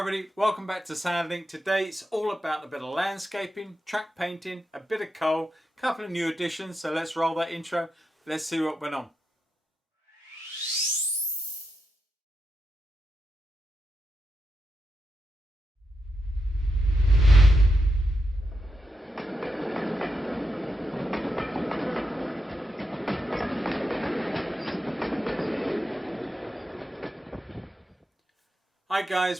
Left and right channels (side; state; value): both; normal; correlation 0.86